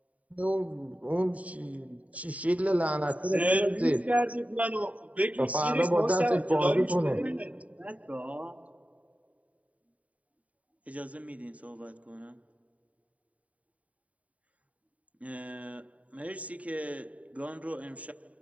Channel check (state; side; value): late; left; 0.068 ms